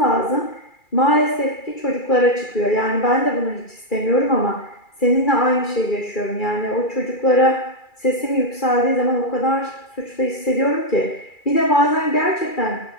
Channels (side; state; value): right; late; 2.3 ms